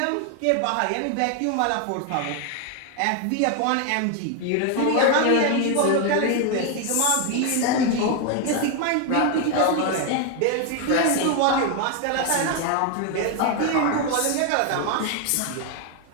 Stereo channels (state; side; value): different; both; correlation 0.01